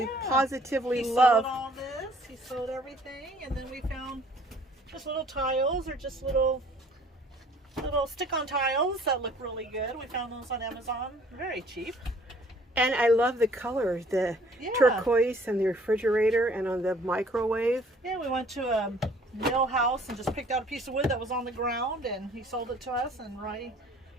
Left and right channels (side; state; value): both; normal; correlation 0.56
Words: positively he love. Sewed all this. He sewed everything, and then we found just little tiles or just little stick-on tiles that look really good. We found those on Amazon, very cheap. And I love the color, the turquoise and the refrigerator and on the microwave. Yeah, we went to a mill house and just picked out a piece of wood that was on the ground, and he sold it to us, and Roy